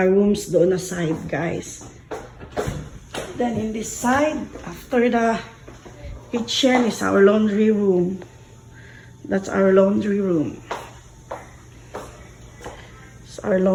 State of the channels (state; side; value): identical; both; correlation 1.00